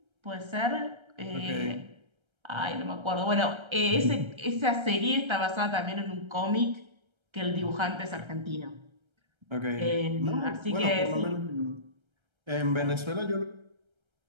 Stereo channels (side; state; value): left; late; 1.3 ms